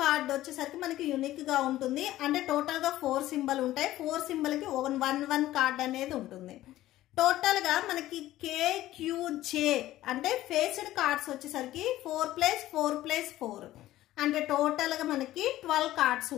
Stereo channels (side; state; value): right; quieter; 14.9 dB